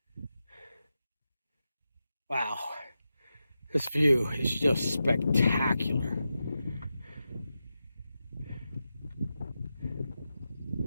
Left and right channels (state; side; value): inverted; both; correlation -0.90